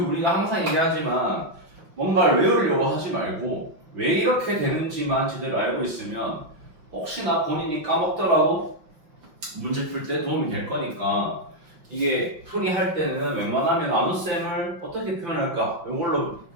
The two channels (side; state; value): left; late; 5.7 ms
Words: 항상 얘기하지만 뭔가를 외우려고 하지 말고 왜 이렇게 되는지만 제대로 알고 있으면 혹시나 본인이 까먹더라도 문제 풀 때 도움이 될 거니까 이게 풀이할 때는 웬만하면 나눗셈을 어떻게 표현할까? 이걸로